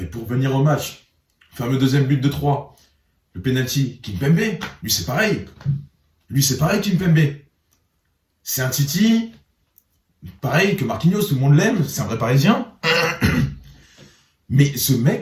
pour venir au match, le fameux deuxième but de 3, le penalty, Kimpembe, lui c'est pareil. Kimpembe. C'est un Titi, pareil que Marquinhos, tout le monde l'aime, c'est un vrai Parisien. Mais ce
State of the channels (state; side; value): identical; both; correlation 1.00